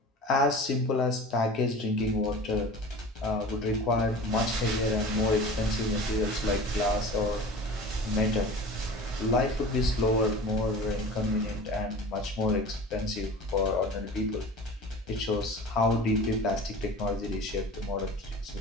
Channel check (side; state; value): both; normal; correlation 0.38